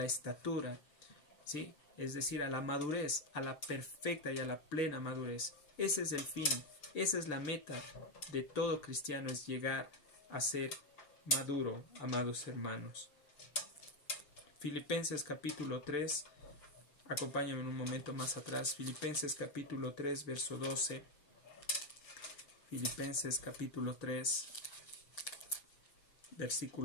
estatura, ¿sí? Es decir, a la madurez, a la perfecta y a la plena madurez. Ese es el fin, esa es la meta de todo cristiano, es llegar a ser maduro, amados hermanos. Filipenses capítulo 3, acompáñame en un momento más atrás. Filipenses capítulo 3, verso 12. Filipenses capítulo 3,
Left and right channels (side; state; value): right; late; 6.8 ms